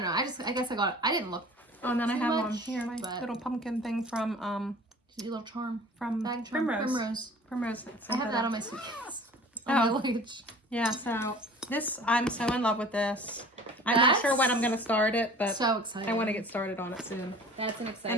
know. I guess I got it. I didn't look. Oh, and then I have much, one here, my little pumpkin thing from your little charm. from Bag charm. Primrose. I have that on my suitcase. On my luggage. Yeah, so this, I'm so in love with this. I'm not sure when I'm going to start it, but so excited. I want to get started on it soon. That's an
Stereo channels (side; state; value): both; normal; correlation 0.45